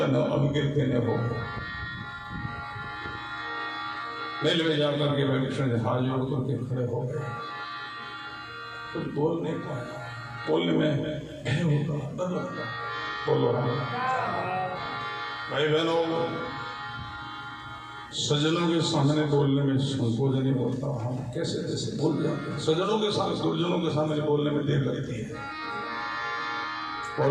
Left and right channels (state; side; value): identical; both; correlation 1.00